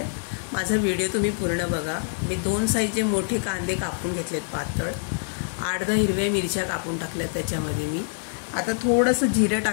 माझा व्हिडिओ तुम्ही पूर्ण बघा। मी 2 साईजचे मोठे कांदे कापून घेतलेत पातळ, 8-10 हिरव्या मिरच्या कापून टाकल्यात त्याच्यामध्ये मी। आता थोडंसं जिरं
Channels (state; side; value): silent; right; digital silence